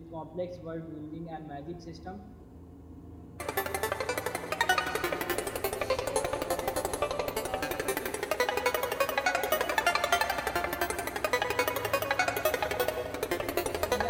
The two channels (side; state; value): both; identical; correlation 1.00